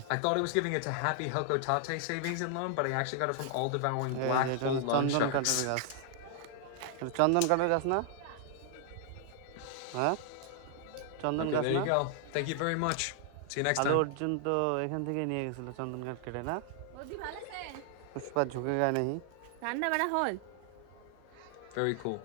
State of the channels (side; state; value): both; different; correlation 0.00